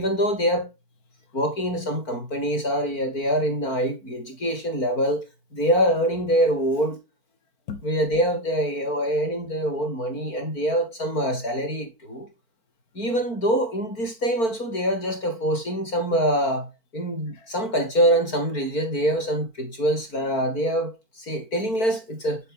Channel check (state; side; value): late; right; 4.5 ms